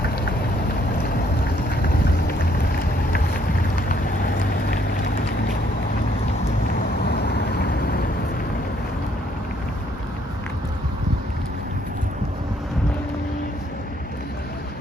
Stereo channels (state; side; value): normal; both; correlation 0.67